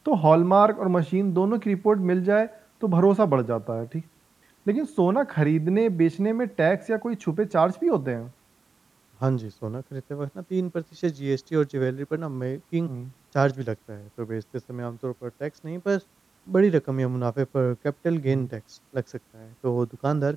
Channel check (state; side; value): quieter; left; 4.5 dB